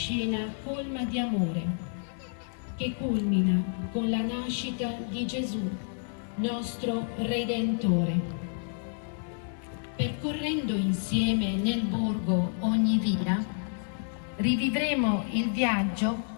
colma di amore che culmina con la nascita di Gesù, nostro Redentore. Percorrendo insieme nel borgo ogni via, rivivremo il viaggio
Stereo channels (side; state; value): right; silent; 58 dB below the other